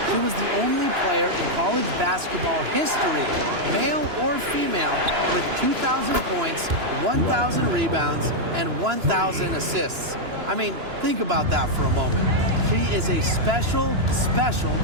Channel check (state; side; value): late; left; 2.9 ms